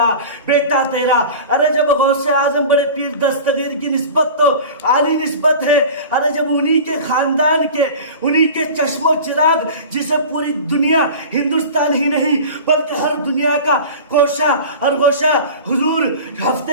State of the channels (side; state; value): both; inverted; correlation -0.36